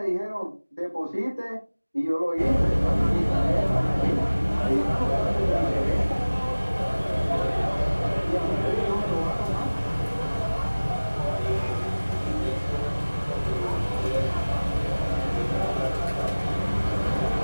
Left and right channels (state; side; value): inverted; both; correlation -1.00